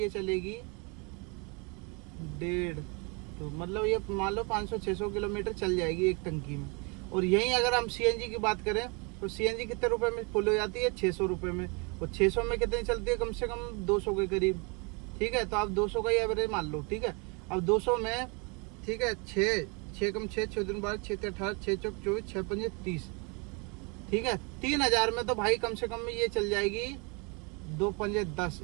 चलेगी 1.5, तो मतलब ये मान लो 500-600 किलोमीटर चल जाएगी एक टंकी में। और यहीं अगर हम सीएनजी की बात करें तो सीएनजी कितने रुपए में फुल हो जाती है? 600 रुपए में। और 600 में कितनी चलती है? कम से कम 200 के करीब, ठीक है। तो आप 200 का ही एवरेज मान लो, ठीक है। अब 200 में, ठीक है, 6 कम 6 दिन 12 6 18 6 चौक 24 6 5 30, ठीक है। 3000 में तो भाई कम से कम ये चल जाएगी 2 5 10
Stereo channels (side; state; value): left; quieter; 31.8 dB